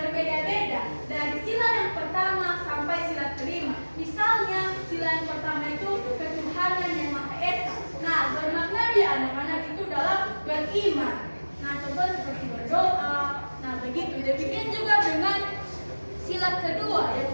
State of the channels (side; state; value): both; inverted; correlation -1.00